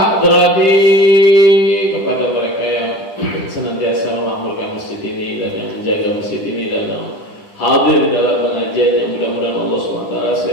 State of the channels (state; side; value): late; right; 10 ms